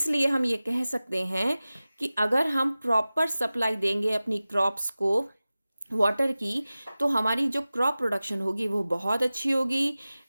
हम ये कह सकते हैं कि अगर हम प्रॉपर सप्लाई देंगे अपनी क्रॉप्स को वाटर की, तो हमारी जो क्रॉप प्रोडक्शन होगी वो बहुत अच्छी होगी।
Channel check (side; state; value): both; inverted; correlation -0.97